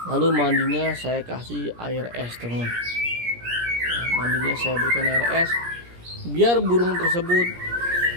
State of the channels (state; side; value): late; left; 17 ms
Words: lalu mandinya saya kasih air es, teman. Ya, mandinya saya berikan air es biar burung tersebut